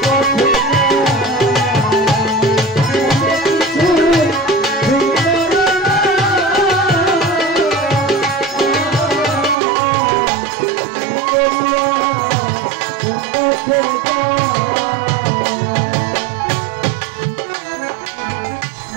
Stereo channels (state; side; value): drops out; left; at 9.6 s